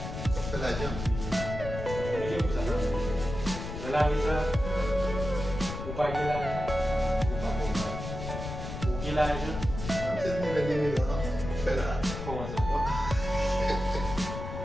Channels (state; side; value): noise; left; rumble, 7 dB below the sound